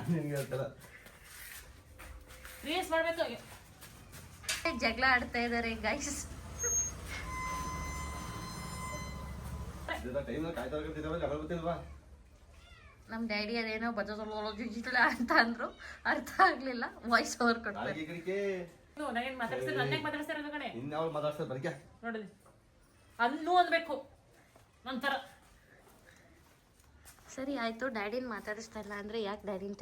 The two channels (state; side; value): identical; both; correlation 1.00